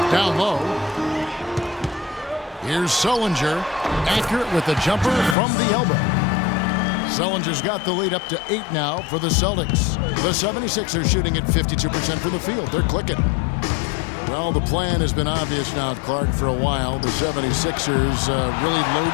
Down low. Here's Sullinger, accurate with the jumper from the elbow. Sullinger's got the lead up to 8 now for the Celtics. The 76ers shooting at 52% from the field. They're clicking. Well, the plan has been obvious now, Clark, for a while. The 76ers really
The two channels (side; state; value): right; drops out; at 5.4 s